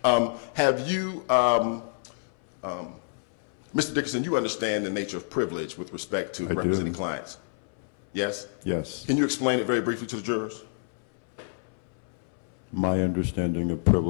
Have you, Mr. Dickerson, you understand the nature of privilege with respect to representing clients? Yes? Yes. Can you explain it very briefly to the jurors? My understanding of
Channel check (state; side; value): silent; right; 60 dB below the other